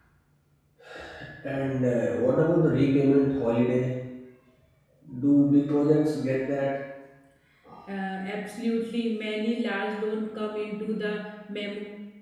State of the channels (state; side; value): identical; both; correlation 1.00